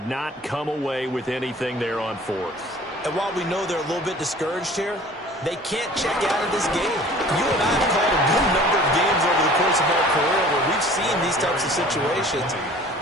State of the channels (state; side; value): normal; both; correlation 0.47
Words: not come away with anything there on 4th. And while we know they're a little bit discouraged here, they can't check out of this game. You and I have called a good number of games over the course of our career where we've seen these types of situations.